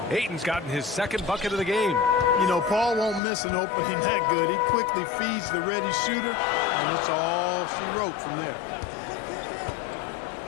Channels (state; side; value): drops out; right; at 3.2 s